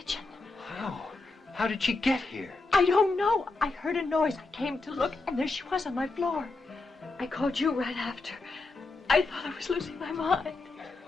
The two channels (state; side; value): quieter; right; 3.5 dB